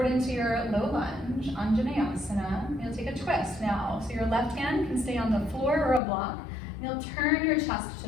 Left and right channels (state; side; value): drops out; right; at 6.0 s